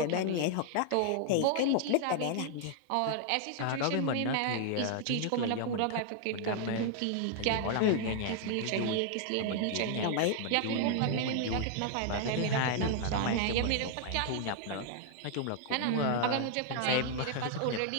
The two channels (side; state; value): both; different; correlation 0.00